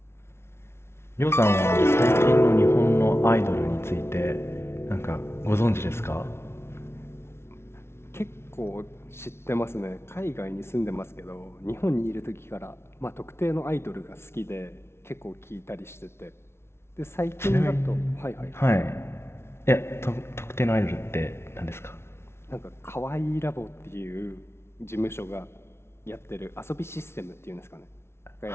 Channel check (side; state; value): right; late; 0.12 ms